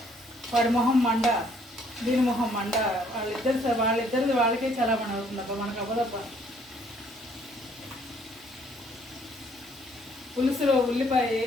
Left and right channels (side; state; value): both; normal; correlation 0.63